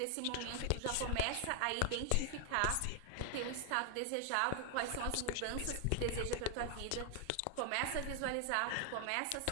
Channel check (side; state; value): both; different; correlation 0.00